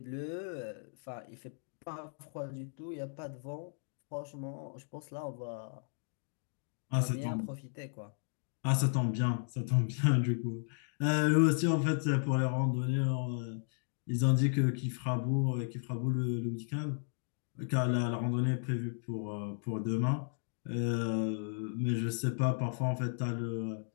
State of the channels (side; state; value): right; silent; digital silence